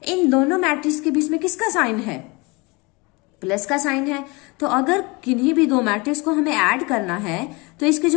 इन दोनों मैट्रिक्स के बीच में किसका साइन है, प्लस का साइन है। तो अगर किन्हीं भी दो मैट्रिक्स को हमें ऐड करना है तो इसके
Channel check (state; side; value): quieter; right; 26.7 dB